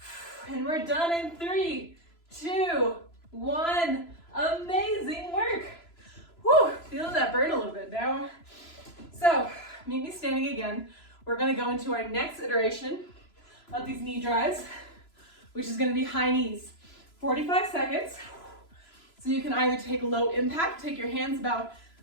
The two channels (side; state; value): right; late; 3.0 ms